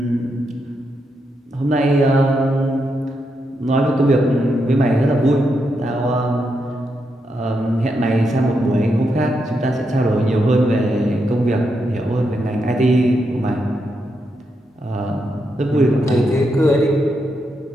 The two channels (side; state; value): both; normal; correlation 0.83